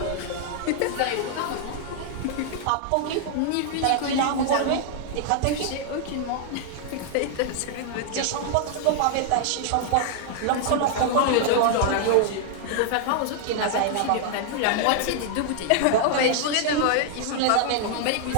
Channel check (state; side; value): different; both; correlation 0.00